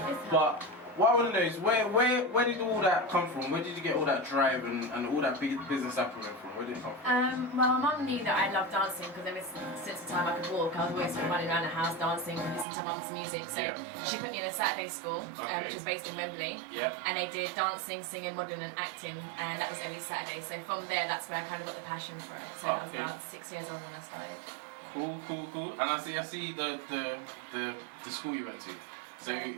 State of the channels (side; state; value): left; drops out; at 12.7 s